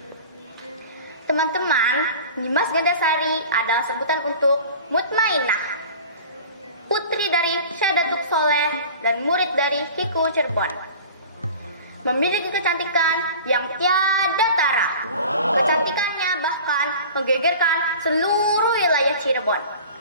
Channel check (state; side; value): inverted; both; correlation -0.40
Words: Teman-teman, Nyimas Gandasari adalah sebutan untuk Mutmainah, putri dari Syekh Datuk Soleh dan murid dari Kiku Cirebon. Memiliki kecantikan yang tiada tara. Kecantikannya bahkan menggegerkan seluruh wilayah Cirebon.